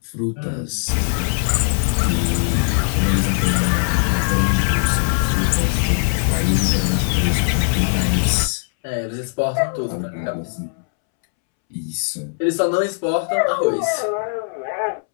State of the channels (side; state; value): right; silent; 66 dB below the other